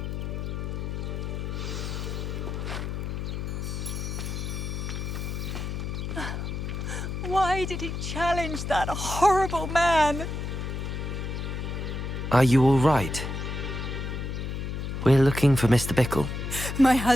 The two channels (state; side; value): noise; left; hum, 4 dB below the sound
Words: Why did he challenge that horrible man? Are you all right? We're looking for Mr. Bickle. My